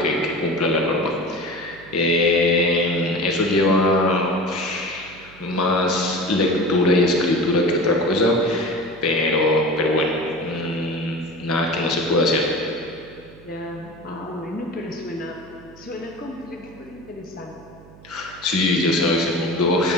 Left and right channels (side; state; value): right; noise; hum, 22 dB below the sound